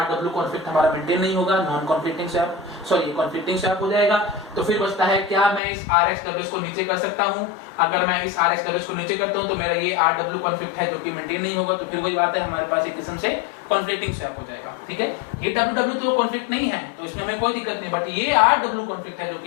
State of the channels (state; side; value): drops out; right; at 5.6 s